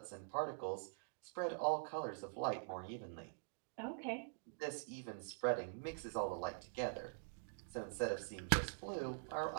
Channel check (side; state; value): left; silent; digital silence